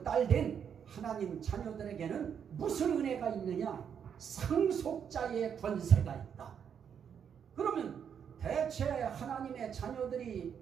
딸 된 하나님 자녀들에게는 무슨 은혜가 있느냐? 상속자의 권세가 있다. 그러면 대체 하나님의 자녀들이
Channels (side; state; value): left; quieter; 7.8 dB